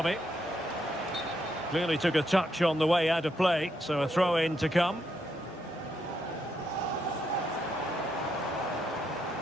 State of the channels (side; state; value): both; normal; correlation 0.79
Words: it. Clearly took a touch on the way out of play, so a throw-in to come.